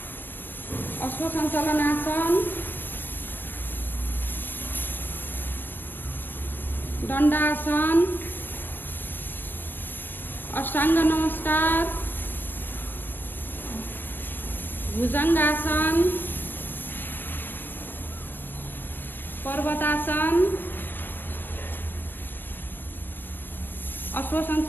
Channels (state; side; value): late; right; 0.094 ms